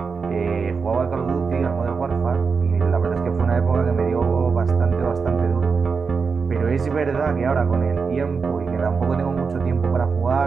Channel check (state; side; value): quieter; left; 5.2 dB